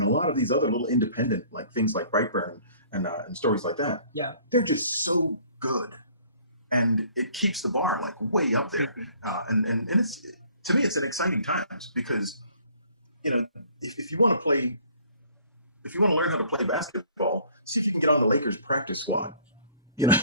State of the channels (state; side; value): inverted; both; correlation -0.55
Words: a lot of these other little independent things like Brightburn and stories like that, they're just so good. And it keeps the bar way up there. And to me, it's an exciting times because, if you want to play, if you want to learn how to play basketball, see if you can get on the Lakers practice squad.